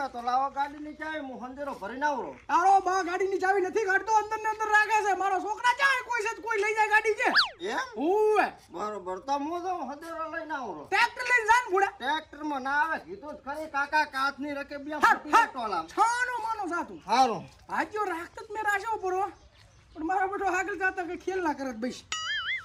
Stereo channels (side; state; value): both; identical; correlation 1.00